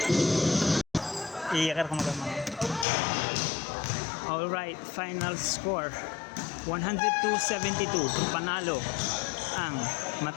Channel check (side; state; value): right; drops out; at 2.9 s